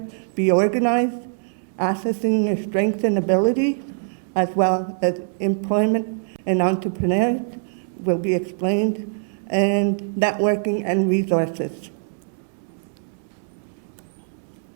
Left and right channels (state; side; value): silent; left; 63 dB below the other